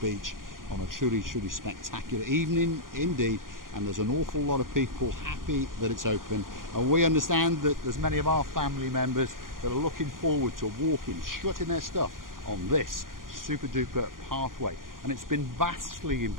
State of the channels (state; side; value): late; left; 0.91 ms